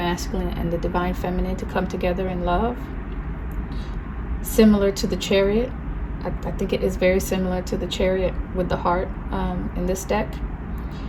and the divine feminine to come together in love. Similar to the Chariot. I think it is very similar to the Chariot with the heart in this deck.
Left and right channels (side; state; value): both; identical; correlation 1.00